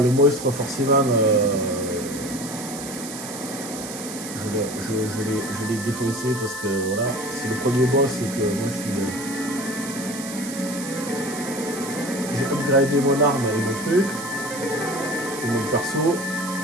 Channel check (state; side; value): noise; right; hiss, 10 dB below the sound